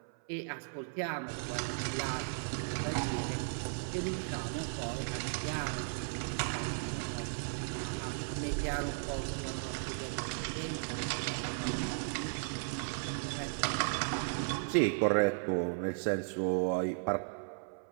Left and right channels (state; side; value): silent; left; 54 dB below the other